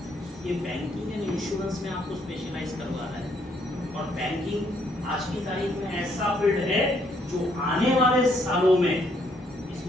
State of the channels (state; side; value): normal; both; correlation 0.69